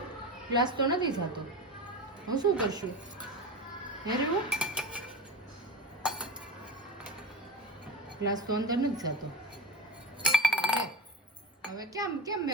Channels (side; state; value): both; normal; correlation 0.27